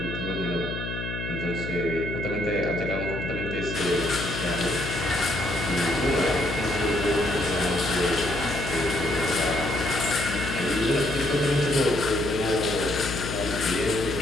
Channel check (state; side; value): noise; left; hum, 5 dB below the sound